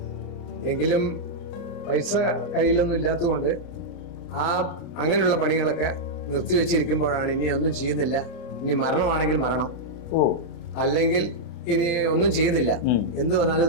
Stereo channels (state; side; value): late; right; 29 ms